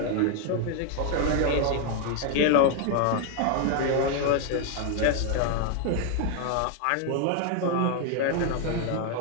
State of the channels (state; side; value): different; both; correlation 0.00